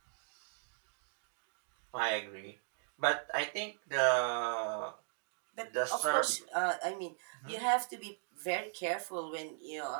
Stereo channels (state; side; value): silent; left; digital silence